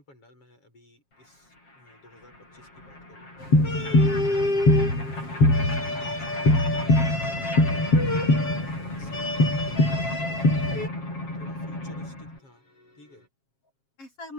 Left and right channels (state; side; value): late; right; 7.4 ms